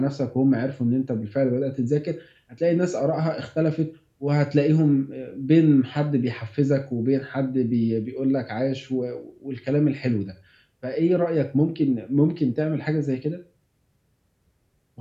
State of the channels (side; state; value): both; identical; correlation 1.00